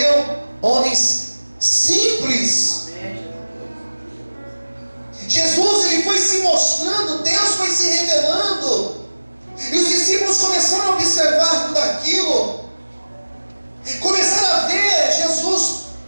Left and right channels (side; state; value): both; inverted; correlation -1.00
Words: homens simples. Jesus, ele foi se mostrando, Deus foi se revelando, e os discípulos começaram a observar tudo aquilo, começaram a ver Jesus,